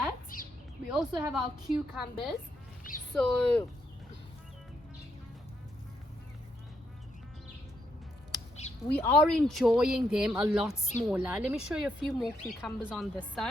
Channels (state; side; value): normal; both; correlation 0.78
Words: we also have our cucumbers. So we are enjoying them a lot smaller. Let me show you a few more cucumbers on this